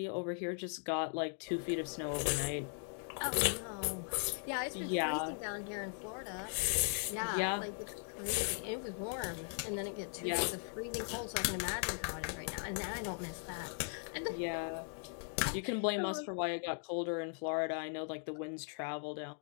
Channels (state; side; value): silent; right; 52 dB below the other